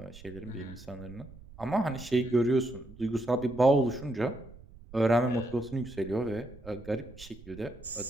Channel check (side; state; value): right; noise; rumble, 19 dB below the sound